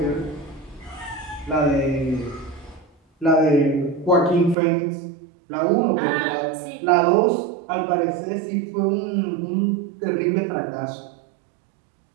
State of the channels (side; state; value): left; drops out; at 4.5 s